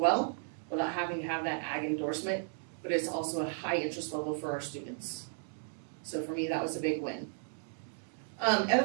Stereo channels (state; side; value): silent; left; digital silence